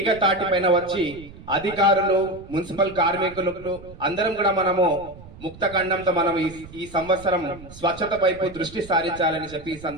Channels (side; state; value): right; noise; rumble, 18 dB below the sound